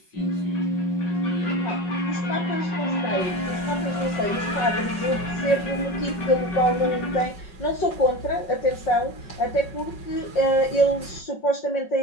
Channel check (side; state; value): right; late; 5.4 ms